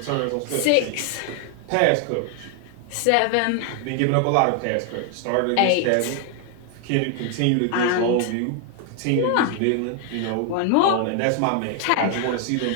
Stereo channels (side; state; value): both; different; correlation 0.00